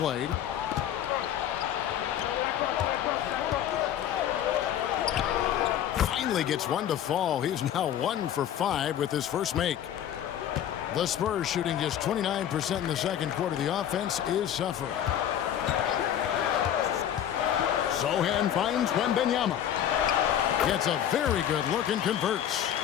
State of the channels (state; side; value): quieter; right; 10.4 dB